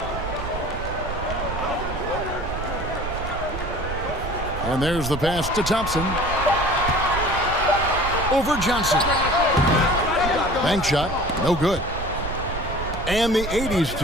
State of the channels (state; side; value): noise; right; rumble, 7 dB below the sound